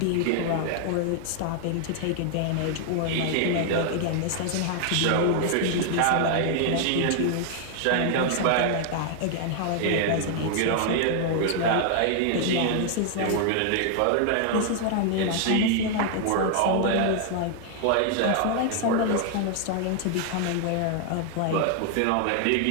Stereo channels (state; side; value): different; both; correlation 0.00